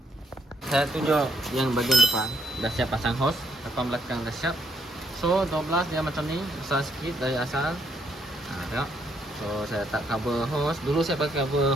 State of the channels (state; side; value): normal; both; correlation 0.73